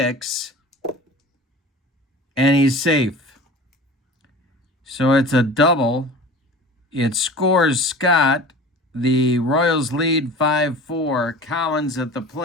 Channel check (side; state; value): both; normal; correlation 0.39